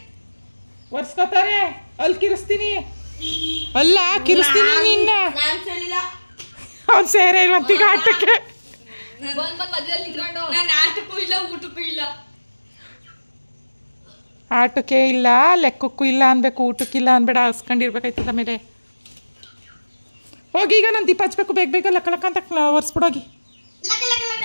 ಒರ್ಸ್ಕೊತಾರೆ ಅಲ್ಲಿ ಕಿರಿಸ್ತೀನಿ ಅಲ್ಲ ಕಿರಿಸ್ತೀನಿ ನಿನ್ನ ಅವ್ನು ಸೇರೆ ಇಲ್ವಂತೀಗ ಆಟಕ್ಕೆ ನಾನು ಆಟಕ್ಕೂ ಇಲ್ಲ ಊಟಕ್ಕೂ ಇಲ್ಲ ಆಟಕ್ಕೆ ಇಲ್ಲ ಲೆಕ್ಕಕ್ಕೂ ಇಲ್ಲ ಅನ್ಬೇಕು ಊಟಕ್ಕಿಲ್ಲ ಅನ್ಬೇಡ ಹಸ್ಕೊಂಡಿರ್ಬೇಕಾಯ್ತದ ಮೇಲೆ ಹೋಗಿ ಈಗ ನಾನು ದೀಪ ಹಚ್ಬೇಕು ಬೇಗ ಬೇಗ ಲಕ್ಕ ಲಕ್ಕ ಅಂತ ಒರ್ಸ್ಬಿಡೋಗಿ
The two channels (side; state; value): both; inverted; correlation -1.00